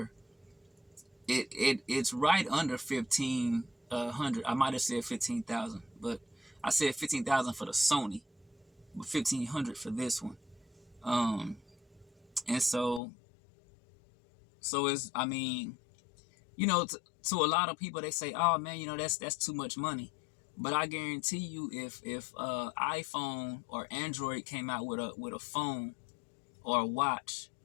it's right under 1,500. I might have said 15,000, but I said 15,000 for the Sony, but 1,500 for this one. And so it's, I mean, to a lot of people, they say, oh man, that's too much money. But I guarantee you, if iPhone or Android came out with a phone or a watch,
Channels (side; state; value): right; drops out; at 13.0 s